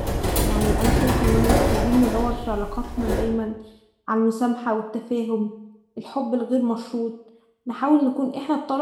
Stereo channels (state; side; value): identical; both; correlation 1.00